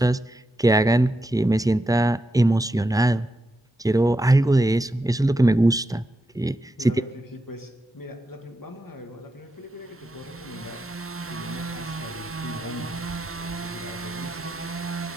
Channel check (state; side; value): normal; both; correlation 0.86